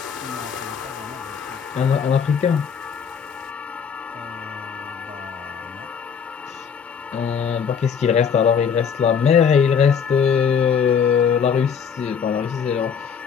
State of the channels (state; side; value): quieter; right; 7.0 dB